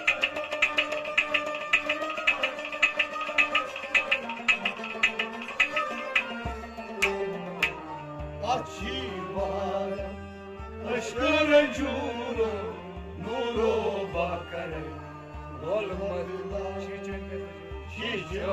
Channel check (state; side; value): identical; both; correlation 1.00